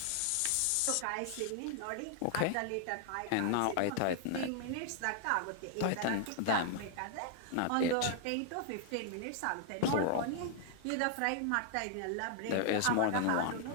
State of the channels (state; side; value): different; both; correlation 0.00